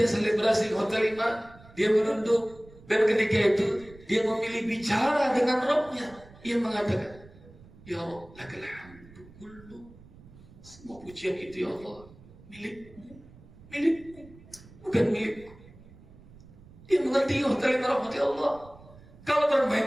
selebrasi iman, dia menunduk, dan ketika itu dia memilih bicara dengan Rabbnya. Ia mengatakan, "Ya Rabb, lakal hamdu kullu." Semua pujian itu ya Allah milikmu, bukan milikku. Dia mengerti rahmati Allah. Kalau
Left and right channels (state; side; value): noise; right; rumble, 22 dB below the sound